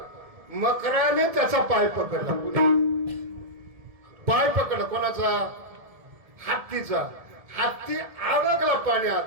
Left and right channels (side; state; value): left; late; 1.7 ms